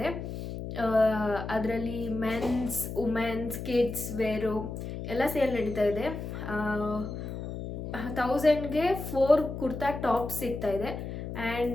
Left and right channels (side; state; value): left; noise; hum, 7 dB below the sound